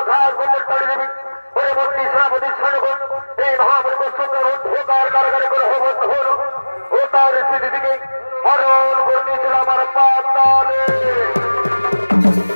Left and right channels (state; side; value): inverted; both; correlation -1.00